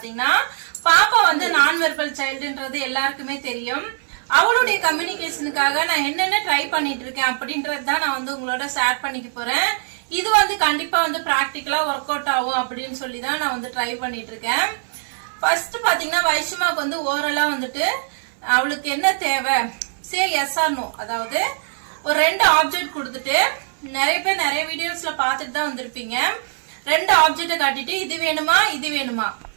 பாப்பா வந்து நான் வெர்பல் சைல்டுன்றது எல்லாருக்குமே தெரியும். அவளுடைய கம்யூனிகேஷனுக்காக நான் என்னென்ன ட்ரை பண்ணிட்டு இருக்கேன் அப்படின்றது தான் நான் வந்து உங்களோட ஷேர் பண்ணிக்க போறேன். இது வந்து கண்டிப்பா வந்து பிராக்டிக்கலா ஒர்க் அவுட் ஆகும் அப்படின்னு சொல்லி தான் நான் வந்து ட்ரை பண்ணிட்டு இருக்கேன். ஃபர்ஸ்ட் பாத்தீங்கன்னா வைஷ்மாக்கு வந்து ஓரலா வந்துட்டு அவளுக்கு என்ன தேவை சே எஸ் ஆர் நோ, அதாவது ஒரு 2 ஆப்ஜெக்ட் கொடுத்துட்டு நிறைய பேர் நிறைய வீடியோஸ்ல பாத்துட்டு தான் வந்திருப்பீங்க. 2 ஆப்ஜெக்ட காட்டிட்டு இது வேணுமா இது வேணுமா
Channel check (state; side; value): silent; left; 65 dB below the other